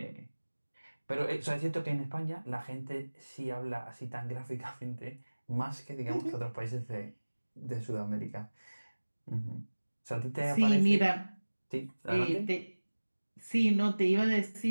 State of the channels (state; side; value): inverted; both; correlation -1.00